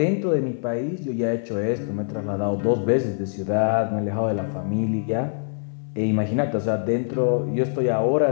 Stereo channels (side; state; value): right; silent; 60 dB below the other